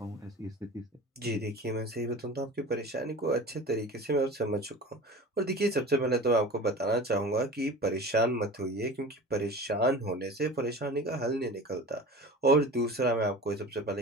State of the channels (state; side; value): normal; both; correlation 0.35